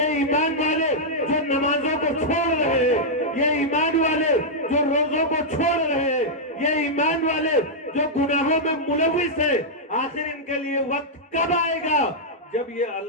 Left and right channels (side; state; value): both; normal; correlation -0.07